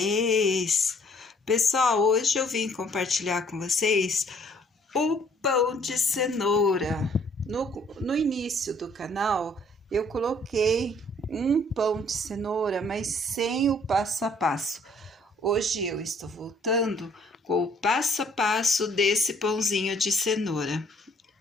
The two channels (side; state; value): both; normal; correlation 0.61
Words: Pessoal, hoje eu vim compartilhar com vocês o pão de cenoura. No início do canal, eu coloquei um pão de cenoura, mas sem o passo a passo. Hoje eu estou voltando com o passo a passo desse pãozinho de cenoura.